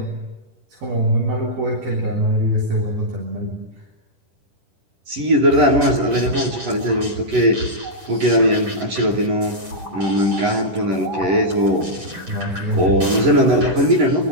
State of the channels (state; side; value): late; left; 10 ms